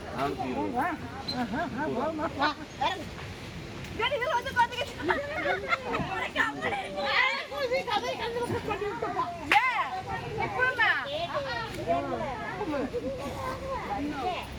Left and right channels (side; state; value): both; identical; correlation 1.00